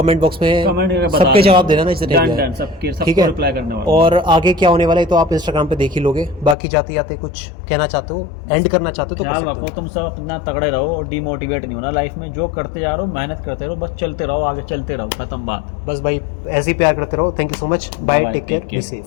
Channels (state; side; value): drops out; right; at 6.6 s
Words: बॉक्स में कमेंट करके बता सबके देना। जवाब देना ना, जितने डन, भी डन, आए। सबके- सबको ठीक है, reply करने वाला हूँ। और आगे क्या होने वाला है तो आप इंस्टाग्राम पे देख ही लोगे। बाकी जाते जाते कुछ कहना चाहते हो, एंड करना चाहते हो तो कर ख्याल सकते रखो, हो। तुम सब अपना तगड़े रहो और डिमोटिवेट नहीं होना लाइफ में। जो करते जा रहे हो, मेहनत करते रहो, बस चलते रहो, आगे चलते रहो, खत्म बात। बस भाई ऐसे ही प्यार करते रहो। Thank you so much, bye, Bye, take care, take be care. Safe.